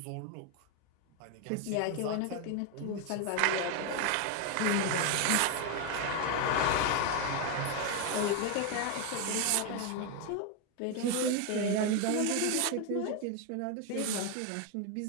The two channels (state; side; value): different; both; correlation 0.01